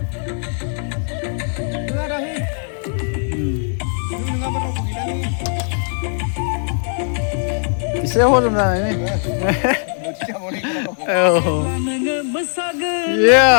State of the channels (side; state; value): right; silent; 60 dB below the other